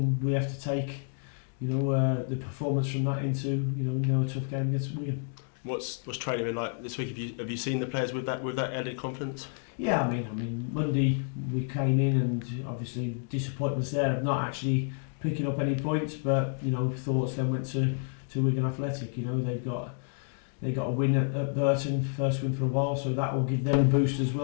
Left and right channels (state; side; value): silent; right; 58 dB below the other